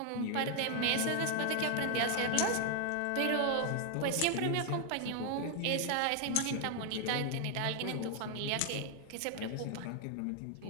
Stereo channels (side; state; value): both; different; correlation 0.00